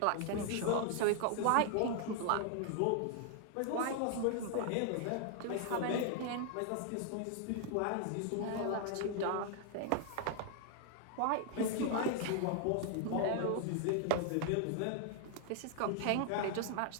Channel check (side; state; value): both; different; correlation 0.00